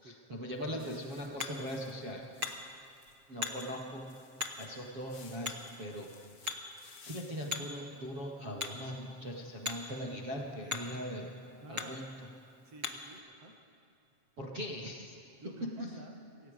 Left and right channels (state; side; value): late; left; 7.5 ms